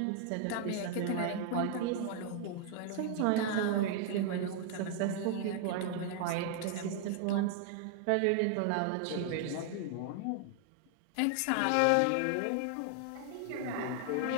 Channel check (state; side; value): different; both; correlation 0.00